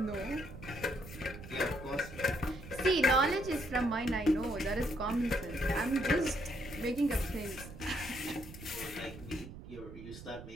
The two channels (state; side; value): noise; right; rumble, 13 dB below the sound